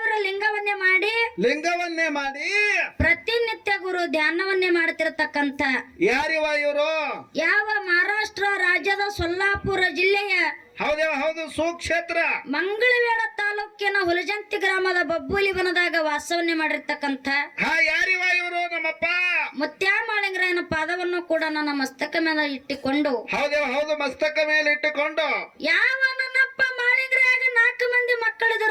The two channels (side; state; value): both; identical; correlation 1.00